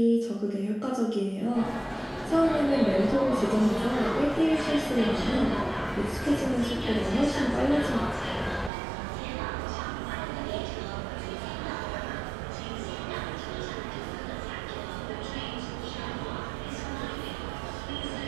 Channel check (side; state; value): left; drops out; at 8.7 s